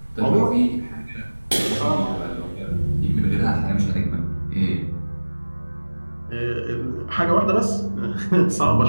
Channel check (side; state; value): both; inverted; correlation -1.00